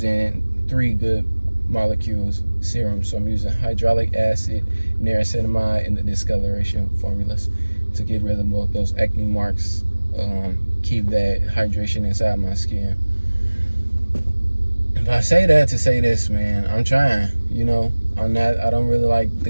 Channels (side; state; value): both; inverted; correlation -1.00